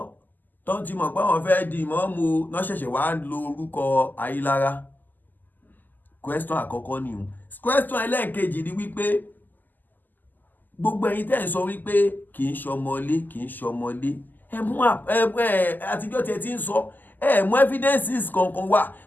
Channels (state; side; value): late; right; 0.086 ms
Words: tó ti mọ̀ pé wọ́n fẹ́ di ìmọ̀ọ́mù náà ṣẹ̀ṣẹ̀ wá lo orúkọ Ayílára question àkọ́kọ́ ni o question ẹlẹ́ẹ̀kejì ni wípé gbogbo ẹ̀yin tẹ́ ń sọ wípé kì í ṣọmọlé ẹ mú àtijọ́ tẹ́ ti ń sọ ẹ mú evidences kankan wá